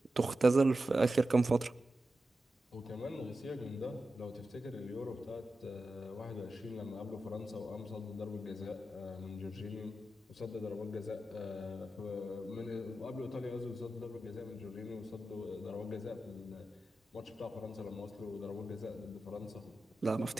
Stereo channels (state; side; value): normal; both; correlation 0.92